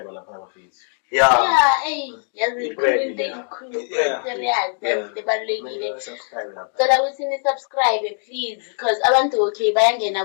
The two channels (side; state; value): right; silent; 56 dB below the other